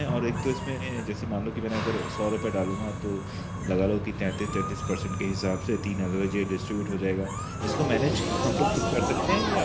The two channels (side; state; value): both; identical; correlation 1.00